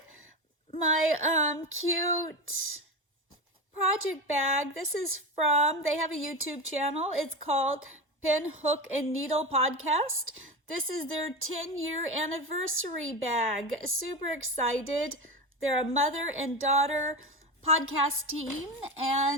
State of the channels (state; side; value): normal; both; correlation 0.21